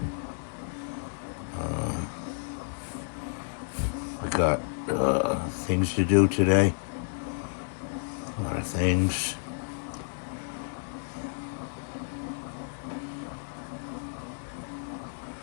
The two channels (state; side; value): silent; right; 57 dB below the other